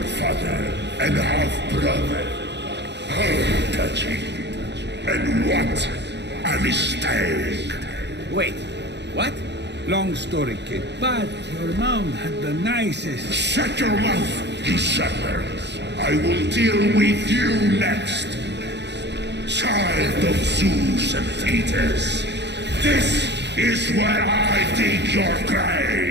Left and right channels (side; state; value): left; late; 0.50 ms